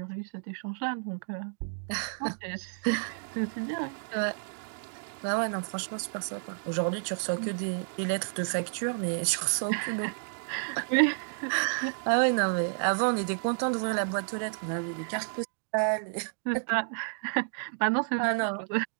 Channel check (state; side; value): silent; left; digital silence